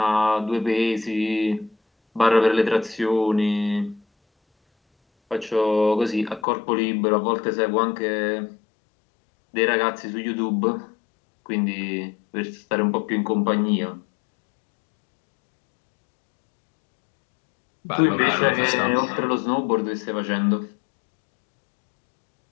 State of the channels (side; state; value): right; drops out; at 6.5 s